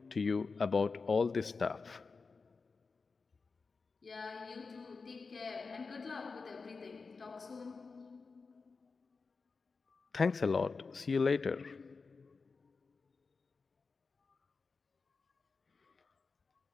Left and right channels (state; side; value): quieter; right; 4.5 dB